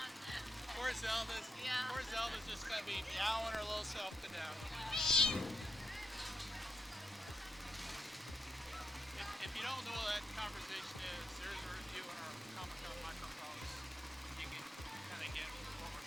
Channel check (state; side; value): normal; both; correlation 0.82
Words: Poor Zelda's. Yeah. Poor Zelda's just gonna be meowing her little self to death. If you don't know what that conversation is, there's a review on our Comic-Con microphones. You can kind of get what we're